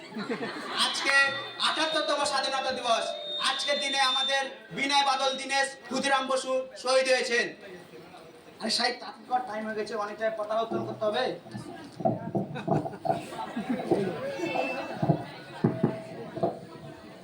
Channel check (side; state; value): both; identical; correlation 1.00